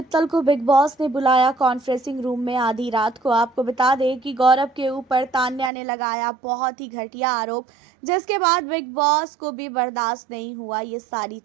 को big boss ने बुलाया कॉन्फ्रेंसिंग रूम में आधी रात को। आपको बता दें कि गौरव के ऊपर तान्या ने लगाया बहुत ही घटिया आरोप, जिसके बाद बिग बॉस को भी बर्दाश्त नहीं हुआ ये सारी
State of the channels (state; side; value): drops out; left; at 5.7 s